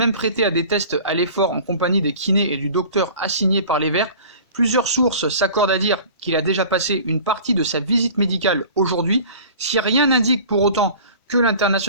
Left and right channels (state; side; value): inverted; both; correlation -0.43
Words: prêté à des tests à l'effort en compagnie des kinés et du docteur assigné par les Verts. Plusieurs sources s'accordent à dire qu'il a déjà passé une partie de sa visite médicale aujourd'hui. Si rien n'indique pour autant que